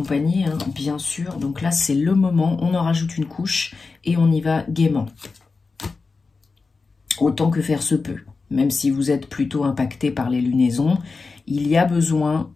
hein, bien sûr. Donc là, c'est le moment, on en rajoute une couche et on y va gaiement. Autant que faire se peut. Même si vous êtes plutôt impacté par les lunaisons, il y a besoin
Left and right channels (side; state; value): right; quieter; 4.3 dB